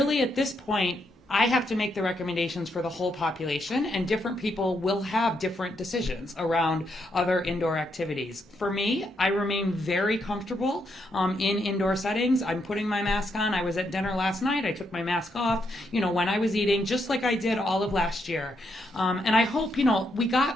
at this point, I have to make the recommendations for the whole population, and different people will have different decisions around other indoor activities. For me, I remain very comfortable in indoor settings. I'm putting my mask on. I was at dinner last night. I took my mask off, when I was eating, just like I did all of last year. And I hope, we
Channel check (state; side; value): normal; both; correlation 0.78